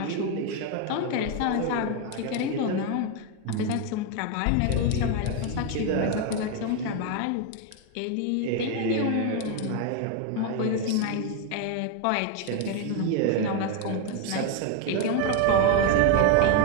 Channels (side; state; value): both; different; correlation 0.01